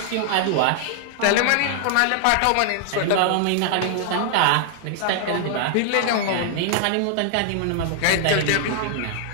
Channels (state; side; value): different; both; correlation 0.00